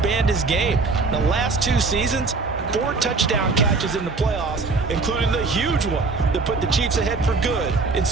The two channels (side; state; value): left; quieter; 3.9 dB